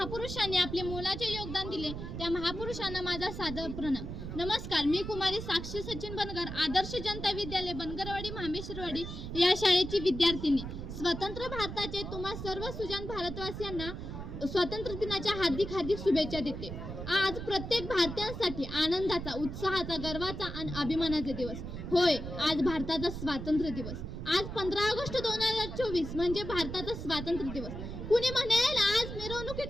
आपले मोलाचे योगदान दिले त्या महापुरुषांना माझा सादर प्रणाम. नमस्कार, मी कुमारी साक्षी सचिन बनगर, आदर्श जनता विद्यालय बनगरवाडी मामेश्वरवाडी या शाळेची विद्यार्थिनी. स्वतंत्र भारताचे तुम्हा सर्व सुजाण भारतवासियांना स्वातंत्र्य दिनाच्या हार्दिक हार्दिक शुभेच्छा देते. आज प्रत्येक भारतीयांसाठी आनंदाचा, उत्साहाचा, गर्वाचा आणि अभिमानाचा दिवस. होय, आज भारताचा स्वातंत्र्य दिवस. आज 15 ऑगस्ट 2024 म्हणजे भारताचा स्वातंत्र्य दिवस. कुणी म्हणेल आज मिरवणुकी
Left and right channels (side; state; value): right; noise; rumble, 7 dB below the sound